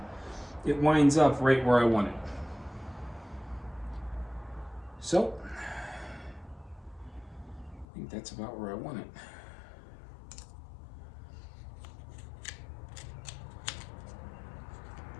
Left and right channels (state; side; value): drops out; right; at 7.9 s